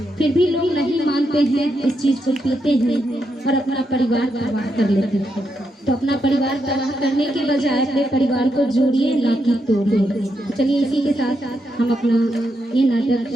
फिर भी लोग नहीं मानते हैं, इस चीज़ को पीते हैं और अपना परिवार तबाह कर लेते हैं। तो अपना परिवार तबाह करने के बजाय अपने परिवार को जोड़िए, ना कि तोड़िए। चलिए इसी के साथ हम अपना ये नाटक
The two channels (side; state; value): both; normal; correlation 0.82